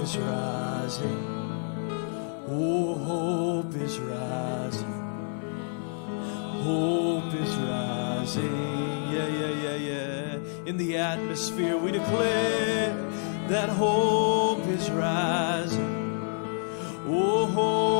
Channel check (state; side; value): silent; right; 59 dB below the other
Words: rising. Oh, hope is rising. Hope is rising. Yeah. In the atmosphere, we declare that hope is rising. Oh,